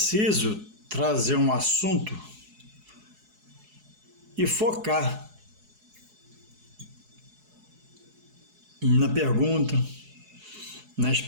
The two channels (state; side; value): late; left; 4.7 ms